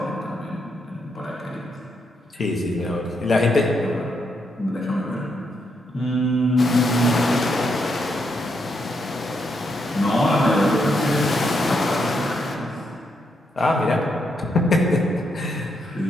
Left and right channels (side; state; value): both; normal; correlation 0.79